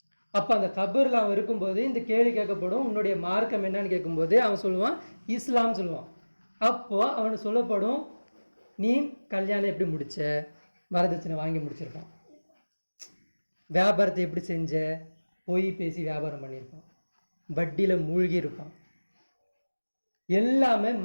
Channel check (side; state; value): both; inverted; correlation -1.00